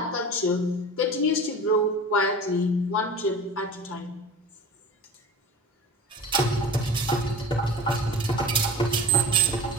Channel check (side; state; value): both; normal; correlation 0.36